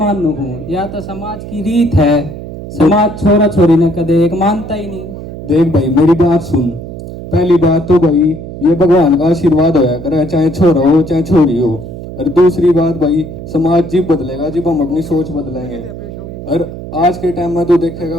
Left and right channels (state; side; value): noise; right; hum, 11 dB below the sound